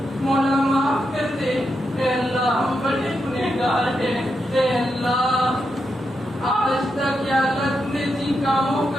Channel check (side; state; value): both; normal; correlation 0.84